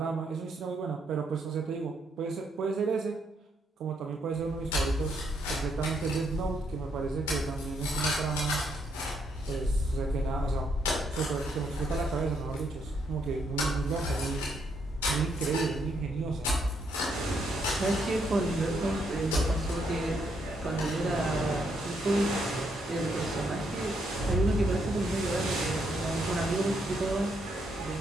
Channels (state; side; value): normal; both; correlation 0.75